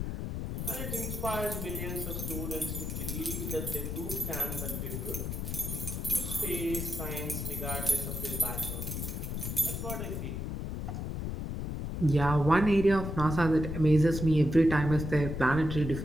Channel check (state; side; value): noise; left; rumble, 4 dB below the sound